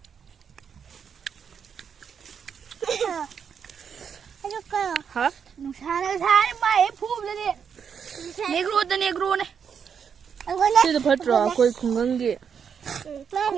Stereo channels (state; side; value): quieter; left; 7.1 dB